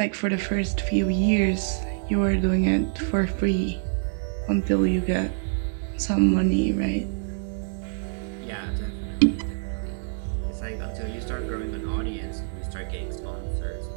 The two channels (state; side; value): silent; left; digital silence